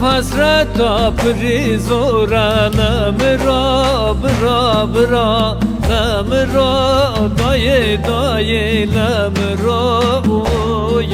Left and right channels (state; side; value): identical; both; correlation 1.00